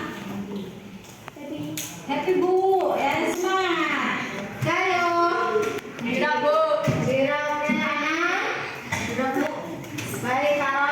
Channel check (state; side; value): identical; both; correlation 1.00